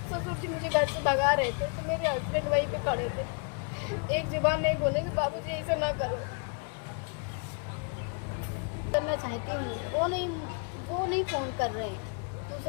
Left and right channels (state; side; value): quieter; right; 38.5 dB